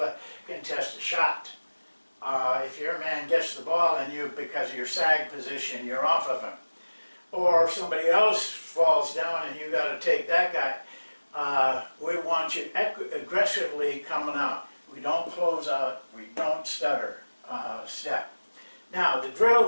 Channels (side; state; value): both; inverted; correlation -1.00